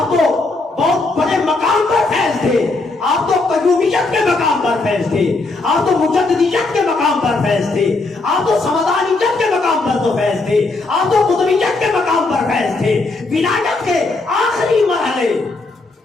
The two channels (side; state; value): right; quieter; 3.4 dB